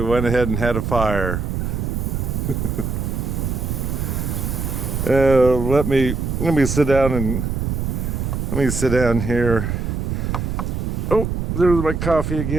went ahead and had a fire. Let me sit down here. Oh, there's my coffee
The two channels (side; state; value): right; noise; rumble, 2 dB below the sound